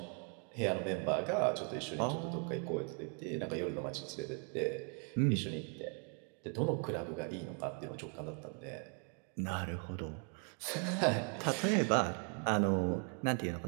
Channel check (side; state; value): left; quieter; 39.9 dB